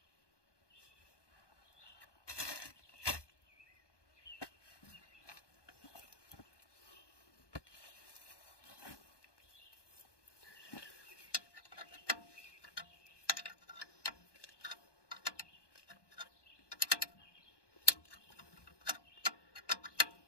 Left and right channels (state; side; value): late; right; 1.2 ms